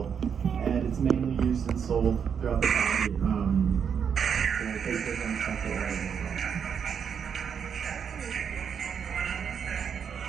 And it's mainly used and sold throughout the valley.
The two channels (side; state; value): left; quieter; 7.3 dB